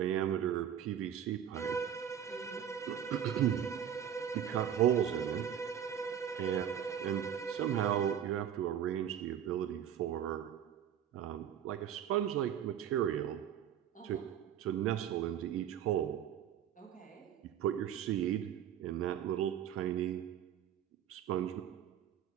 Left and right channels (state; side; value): quieter; left; 9.6 dB